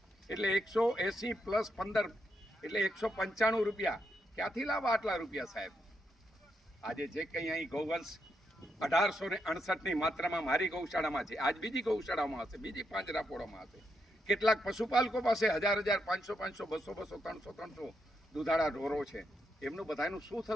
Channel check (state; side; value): normal; both; correlation 0.81